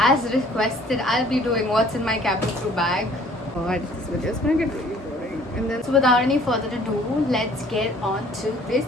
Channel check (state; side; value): normal; both; correlation 0.55